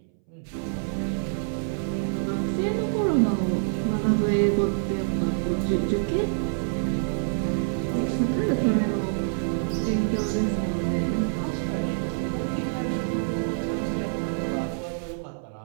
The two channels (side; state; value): left; silent; 61 dB below the other